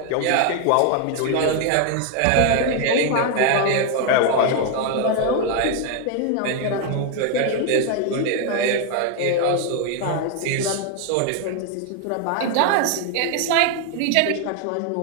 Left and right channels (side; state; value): both; different; correlation 0.01